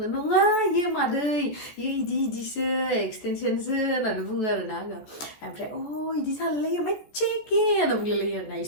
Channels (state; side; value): late; right; 14 ms